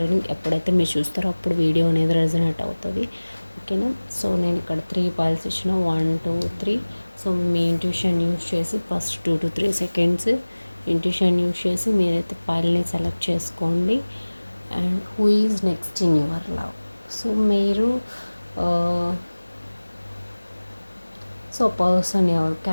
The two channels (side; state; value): both; inverted; correlation -1.00